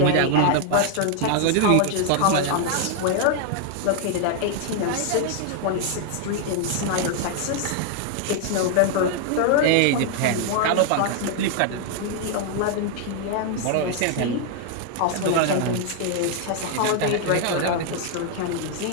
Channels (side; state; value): both; different; correlation 0.00